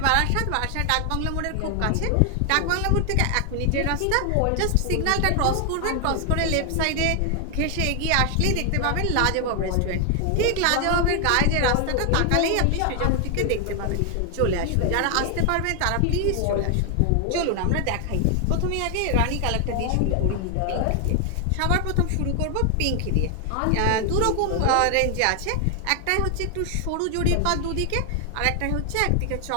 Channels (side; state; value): both; different; correlation 0.00